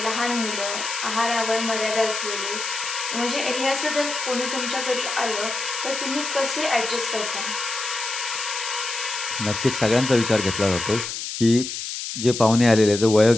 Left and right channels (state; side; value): noise; left; hiss, 6 dB below the sound